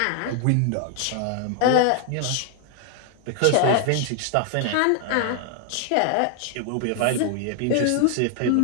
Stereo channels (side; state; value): both; different; correlation 0.00